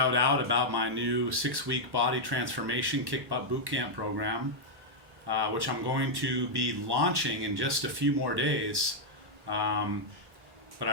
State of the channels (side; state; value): left; late; 1.1 ms